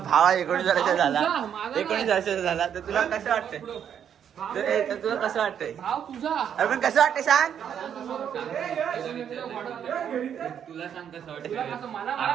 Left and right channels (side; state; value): left; quieter; 8.7 dB